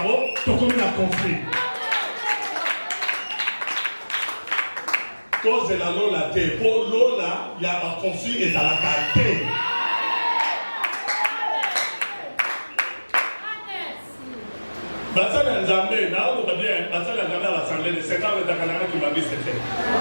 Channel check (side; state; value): both; inverted; correlation -1.00